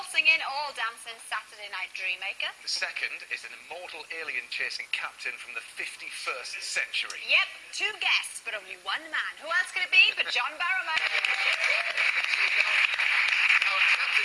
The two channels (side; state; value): both; identical; correlation 1.00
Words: all-dancing Saturday night dreammaker. The second is an immortal alien-chasing captain from the 51st century. Yep, two guests, but only one man. Who else could it be but John Barrowman? Now,